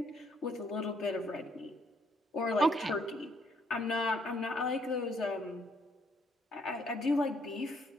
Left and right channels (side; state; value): both; normal; correlation 0.68